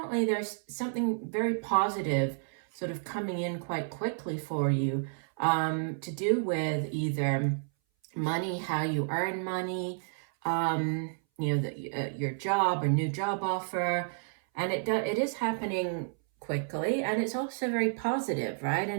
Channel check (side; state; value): left; silent; 57 dB below the other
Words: there's something very positive sort of coming in quite quickly for you to do with either money, how you earn money, your job or new job offer. And it is happening quickly, and it's also very positive, right?